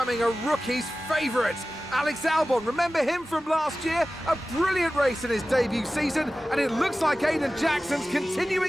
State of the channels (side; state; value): both; normal; correlation 0.96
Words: a rookie's favourite. Alex Albon, remember him from last year? A brilliant race in his debut season, and it looks like Aiden Jackson's